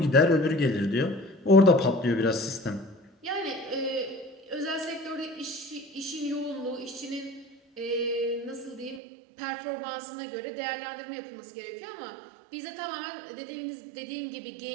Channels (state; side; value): drops out; left; at 9.0 s